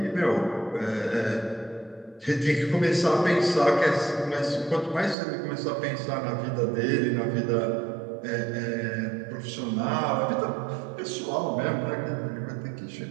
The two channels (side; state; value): left; drops out; at 5.2 s